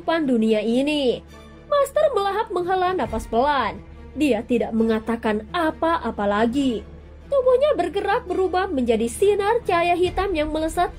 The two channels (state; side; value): identical; both; correlation 1.00